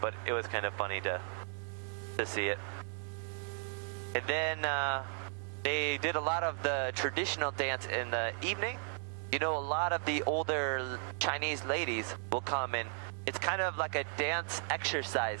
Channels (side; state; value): left; silent; 54 dB below the other